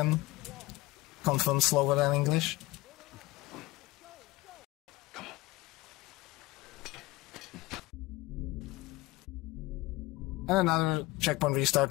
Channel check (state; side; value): quieter; right; 19.7 dB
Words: confirmed slower than English. And another checkpoint restart